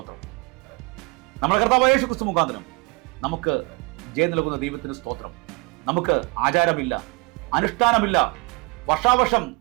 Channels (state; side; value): quieter; left; 27.9 dB